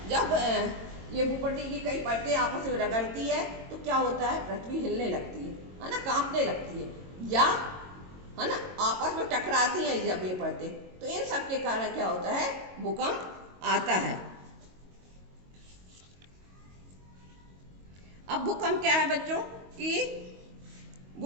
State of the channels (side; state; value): left; late; 22 ms